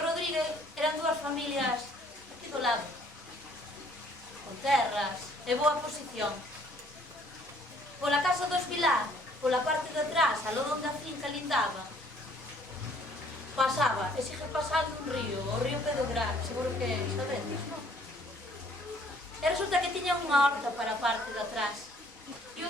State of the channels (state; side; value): normal; both; correlation 0.60